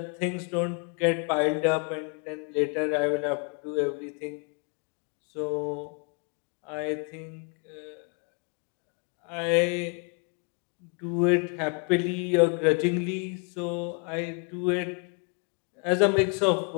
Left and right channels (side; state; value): right; quieter; 38.3 dB